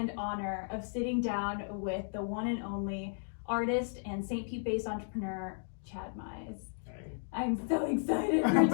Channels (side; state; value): right; silent; digital silence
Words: honor of sitting down with the one and only artist and St. Pete-based entrepreneur, Chad Mize. Hey. I'm so excited for